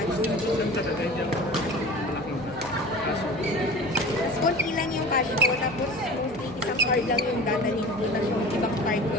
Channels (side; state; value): left; noise; hum, 21 dB below the sound